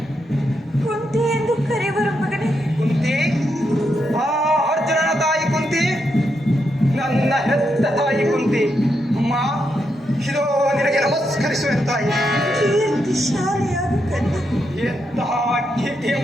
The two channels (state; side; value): normal; both; correlation 0.82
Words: ಕುಂತಿ ಎಂದು ಕರೆಯುವರು ಮಗನೇ. ಕುಂತಿ? ಆ ಅರ್ಜುನನ ತಾಯಿ ಕುಂತಿ? ನನ್ನ ಹೆತ್ತ ತಾಯಿ ಕುಂತಿ. ಅಮ್ಮ, ಇದೋ ನಿನಗೆ ನಮಸ್ಕರಿಸುವ ತಾಯಿ. ಕೀರ್ತಿಶಾಲಿಯಾದ ಕರ್ಣ. ಎಂತಹ